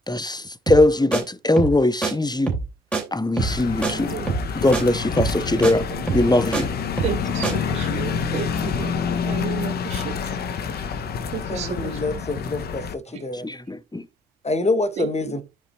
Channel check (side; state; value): both; normal; correlation 0.68